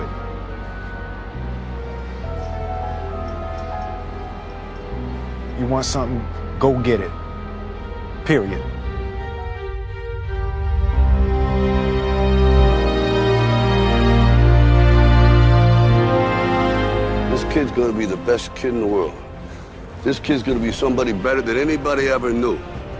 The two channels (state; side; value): identical; both; correlation 1.00